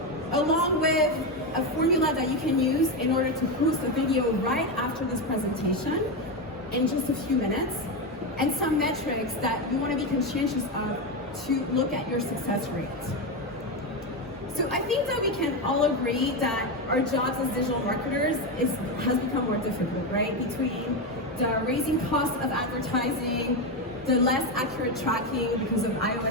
along with a formula that you can use in order to post a video right after this presentation in just a few minutes, and some metrics that you want to be conscientious of to look at your success rate. So I think that we can all agree that our jobs as digital marketers has become more difficult, right? Between the raising cost of advertising, the less accurate tracking because of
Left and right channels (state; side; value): normal; both; correlation 0.12